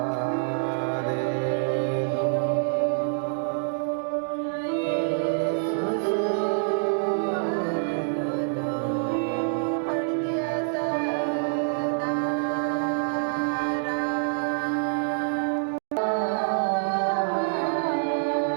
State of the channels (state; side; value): silent; left; digital silence